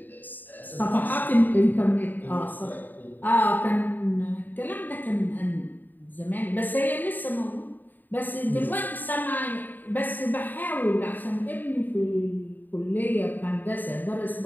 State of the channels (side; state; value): right; late; 0.088 ms